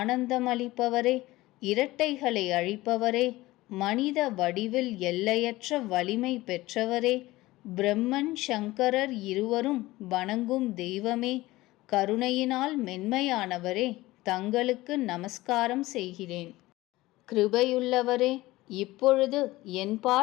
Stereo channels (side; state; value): right; quieter; 18.6 dB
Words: இரட்டைகளை அழிப்பவரே, மனித வடிவில் எல்லையற்ற வலிமை பெற்றவரே, பிரம்மன் சங்கரர் இருவரும் வணங்கும் தெய்வமே, கருணையினால் மென்மையானவரே, தங்களுக்கு நமஸ்காரம் செய்கிறேன். கிருபையுள்ளவரே, இப்பொழுது